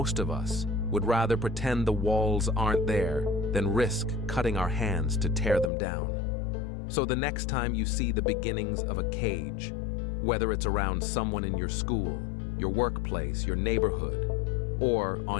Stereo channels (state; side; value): drops out; right; at 5.7 s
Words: of us would rather pretend the walls aren't there than risk cutting our hands to tear them down. So the next time you see the beginnings of a cage, whether it's around someone in your school, your workplace, your neighborhood, or